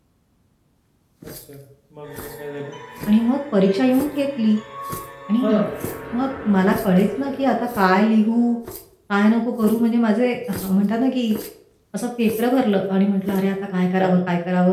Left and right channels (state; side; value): identical; both; correlation 1.00